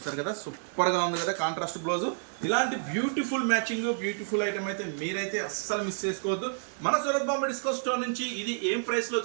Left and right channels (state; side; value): silent; left; 58 dB below the other